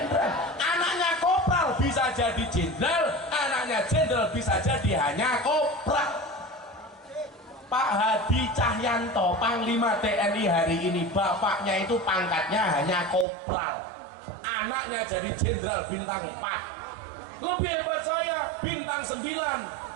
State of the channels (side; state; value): left; drops out; at 13.2 s